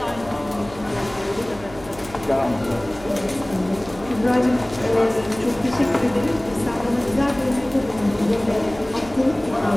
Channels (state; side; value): noise; right; hum, 18 dB below the sound